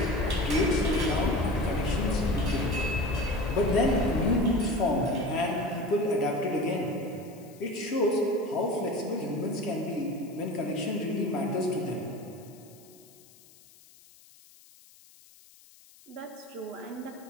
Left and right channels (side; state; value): left; noise; hiss, 25 dB below the sound